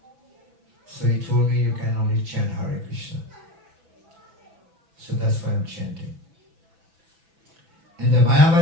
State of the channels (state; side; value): late; left; 6.0 ms